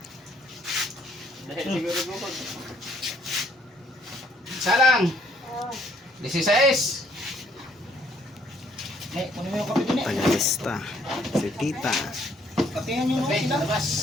Dahil siguro lukod. Salang. 16. Eh, kunin mo yung kape din eh. Pangalista. Si Tita. Kapehan yung Okay, mga sila. labas.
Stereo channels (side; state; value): both; normal; correlation 0.66